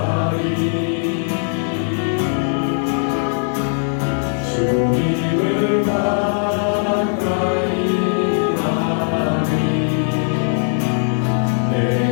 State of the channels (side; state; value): right; silent; 62 dB below the other